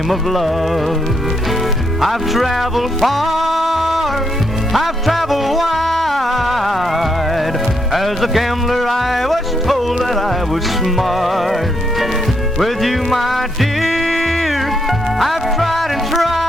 of love. I've traveled far, I've traveled wide. As a gambler I was told that I was smart. With you, my dear, I've tried and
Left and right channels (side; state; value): both; normal; correlation 0.77